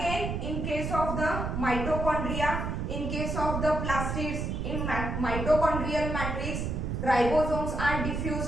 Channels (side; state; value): right; noise; rumble, 2 dB below the sound